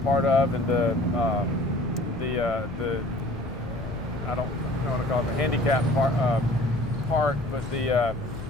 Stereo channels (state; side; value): noise; left; rumble, 11 dB below the sound